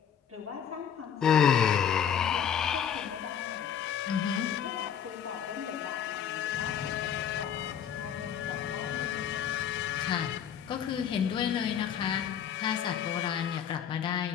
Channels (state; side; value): quieter; right; 8.6 dB